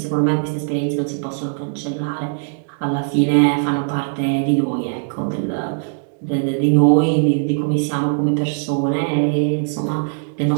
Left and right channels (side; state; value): left; silent; digital silence